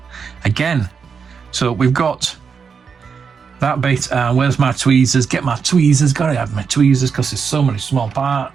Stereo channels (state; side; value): quieter; left; 6.0 dB